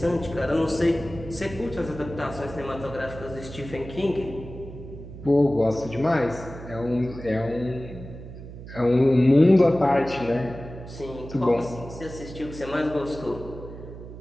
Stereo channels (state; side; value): noise; right; hum, 13 dB below the sound